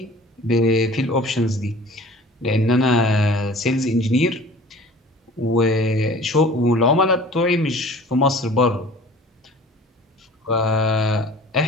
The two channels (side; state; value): both; normal; correlation 0.45